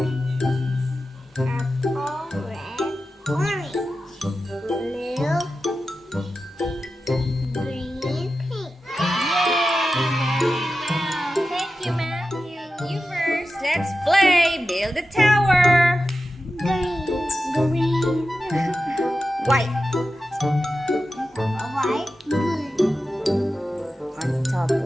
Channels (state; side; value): normal; both; correlation 0.92